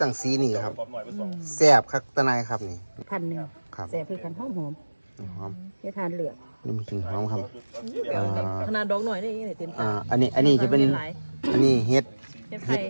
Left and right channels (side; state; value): both; inverted; correlation -1.00